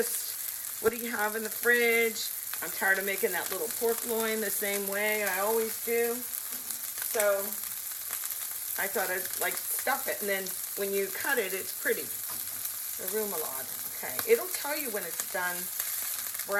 what do you have in the fridge? I'm tired of making that little pork loin the same way I always do. So I thought I'd like stuff it, and then when you cut it, it's pretty. The remoulade, okay. It'll tell you when it's done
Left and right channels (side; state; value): both; identical; correlation 1.00